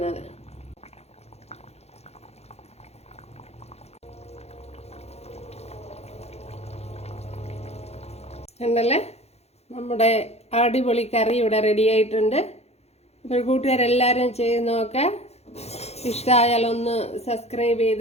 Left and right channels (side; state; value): right; late; 0.31 ms